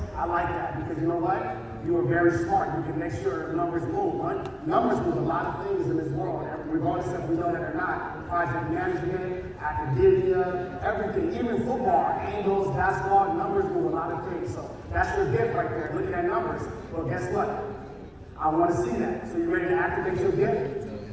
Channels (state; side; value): identical; both; correlation 1.00